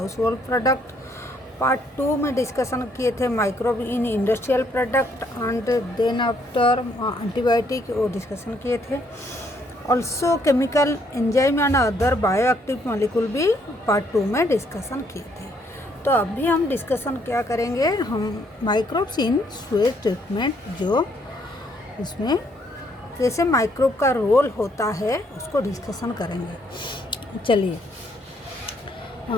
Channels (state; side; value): normal; both; correlation 0.69